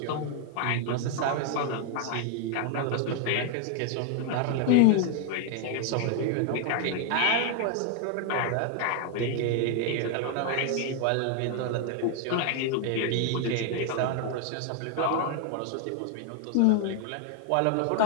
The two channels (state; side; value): different; both; correlation 0.00